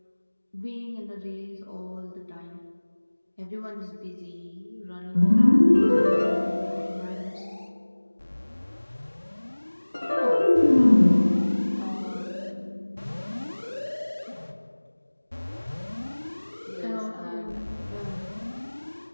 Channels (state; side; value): inverted; both; correlation -1.00